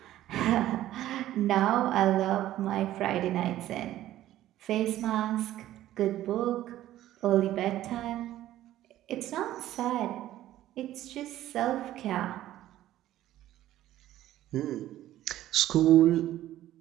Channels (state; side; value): quieter; left; 13.7 dB